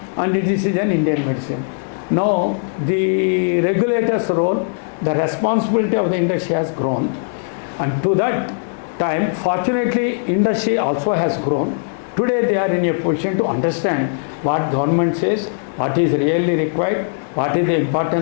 and this is an Indian medicine. Now the regulator's role, the responsibility of the industry has grown, and to that time, fortunately, industry also has grown. Today they are in a position to understand what government says, what is really required, what is the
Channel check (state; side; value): silent; right; digital silence